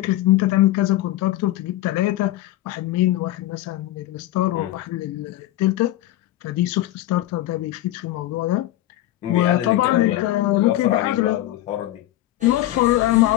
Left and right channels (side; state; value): right; quieter; 15.0 dB